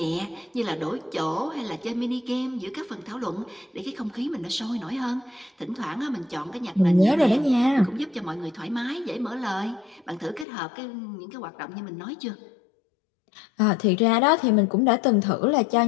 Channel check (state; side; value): drops out; right; at 10.5 s